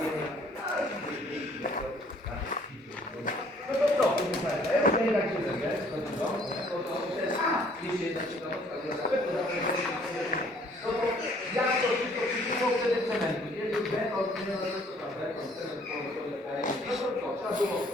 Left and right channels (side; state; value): both; normal; correlation 0.59